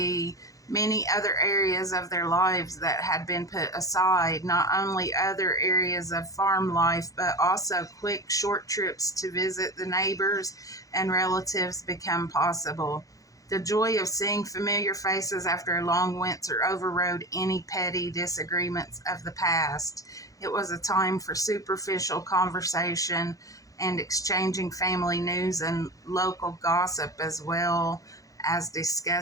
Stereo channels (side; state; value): right; late; 0.17 ms